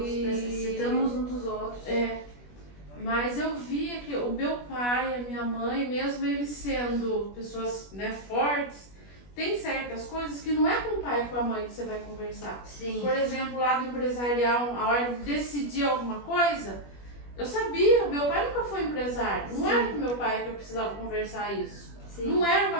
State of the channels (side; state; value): right; late; 21 ms